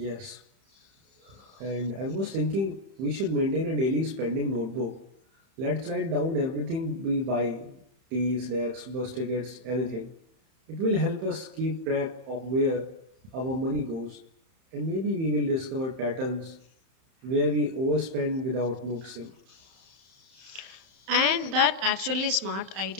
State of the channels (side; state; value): left; late; 31 ms